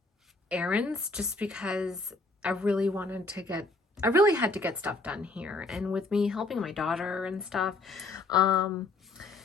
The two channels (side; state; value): right; quieter; 3.2 dB